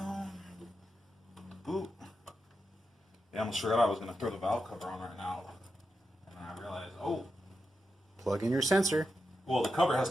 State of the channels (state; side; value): normal; both; correlation 0.88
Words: Boop. Yeah, I almost forgot I was going to throw the valve cover on right now. And then I realized, oh. Plug in your sensor. Well, the cover has